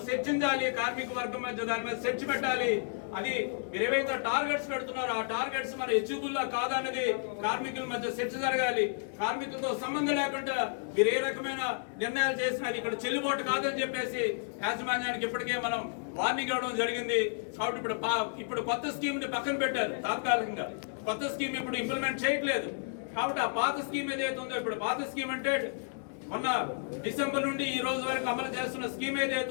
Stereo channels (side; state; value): right; silent; digital silence